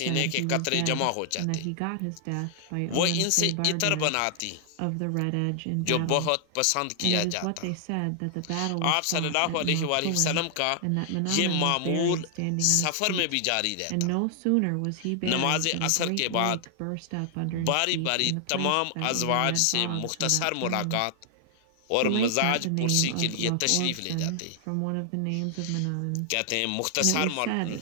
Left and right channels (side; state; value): both; different; correlation 0.00